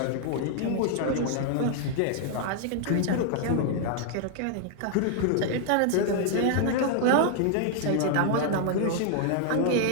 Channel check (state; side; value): different; both; correlation 0.00